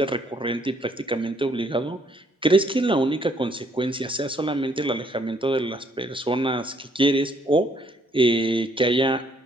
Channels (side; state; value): both; normal; correlation 0.67